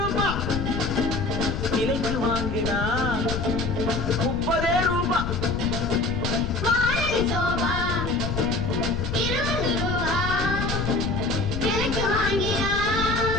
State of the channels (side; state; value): left; noise; rumble, 4 dB below the sound